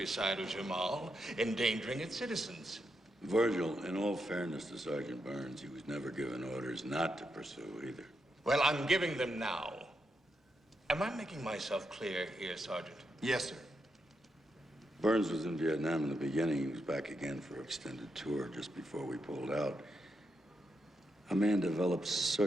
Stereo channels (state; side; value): normal; both; correlation 0.83